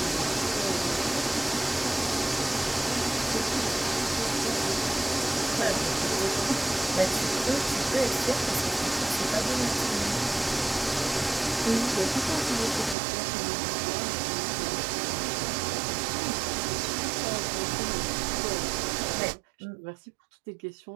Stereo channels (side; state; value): left; drops out; at 13.0 s